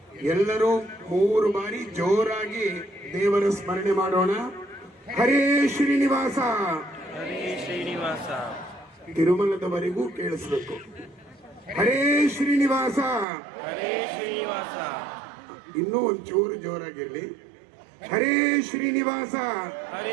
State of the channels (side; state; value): left; drops out; at 13.2 s